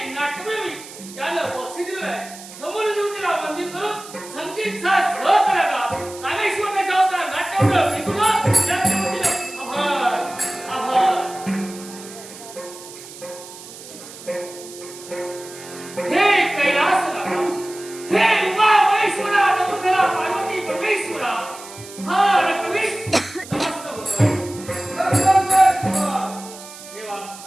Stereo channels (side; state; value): right; noise; hiss, 16 dB below the sound